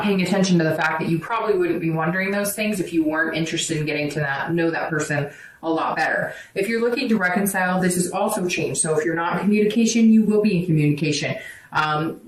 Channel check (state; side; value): identical; both; correlation 1.00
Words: paying attention to the fact that you probably wouldn't be wondering those things if you weren't interested in getting to know that person a lot better. If you're looking to reconcile, this has also changed. So if you're not in communication, you will be in communication.